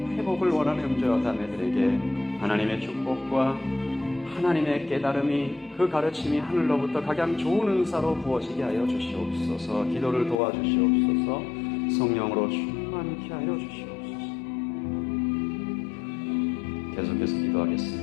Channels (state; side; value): drops out; right; at 10.4 s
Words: 회복을 원하는 형제와 자매들에게 하나님의 축복과 하나님의 깨달음이 그 가르침이 하늘로부터 각양 좋은 은사로 부어지게 하여 주시옵소서. 기도를 도와주시옵소서. 성령으로 충만케 하여 주시옵소서. 계속해서